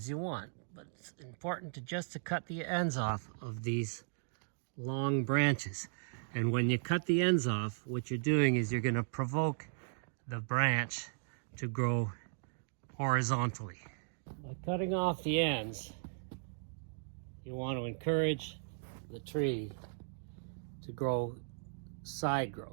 you want, but it's important to cut the ends off of these long branches. And when you cut the ends off, what you're doing is you're going to provoke the branch to grow horizontally. By cutting off the ends, you want to encourage the tree to grow side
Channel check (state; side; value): silent; left; digital silence